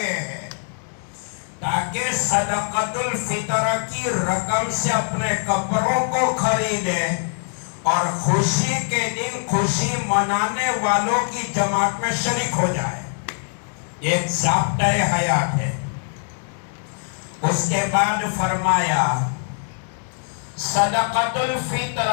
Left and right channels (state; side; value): silent; right; 62 dB below the other